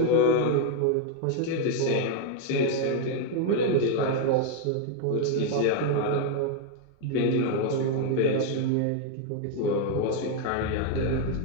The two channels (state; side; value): different; both; correlation 0.01